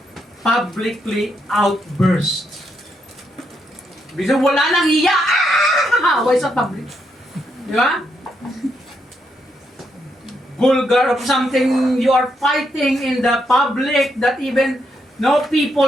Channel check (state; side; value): normal; both; correlation 0.79